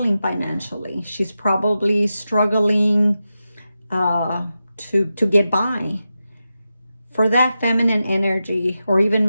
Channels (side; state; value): both; inverted; correlation -0.91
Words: financially. She's probably struggling to get by. For that feminine energy or